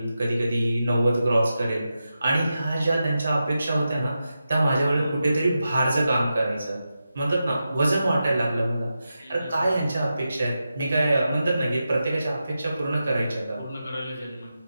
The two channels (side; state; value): both; inverted; correlation -0.90